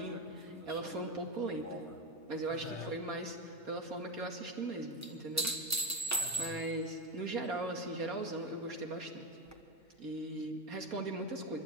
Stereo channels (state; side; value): normal; both; correlation 0.17